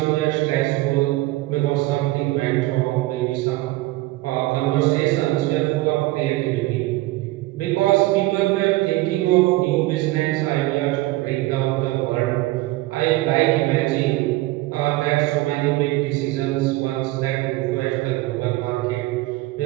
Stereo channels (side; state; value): left; quieter; 18.9 dB